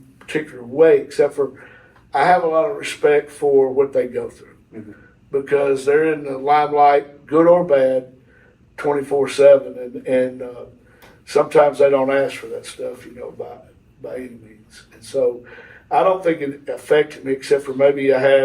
particular way, except for I have a lot of respect for what they go through because they're in the limelight, good or bad, 24/7, and sometimes they don't ask for that stuff, by any means. And so I don't think it affected me, except for maybe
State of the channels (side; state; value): both; identical; correlation 1.00